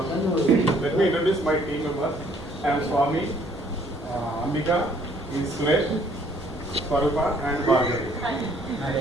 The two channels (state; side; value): noise; left; hum, 24 dB below the sound